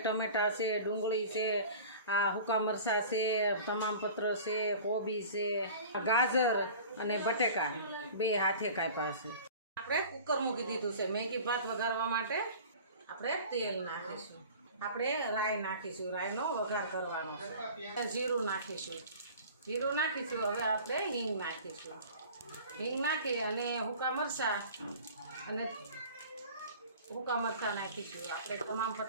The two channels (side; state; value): both; inverted; correlation -0.41